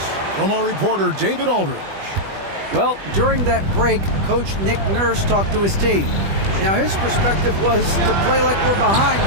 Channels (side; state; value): left; late; 20 ms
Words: from our reporter, David Aldridge. Well, during that break, Coach Nick Nurse talked to his team. Now, his perspective was to play like we're behind.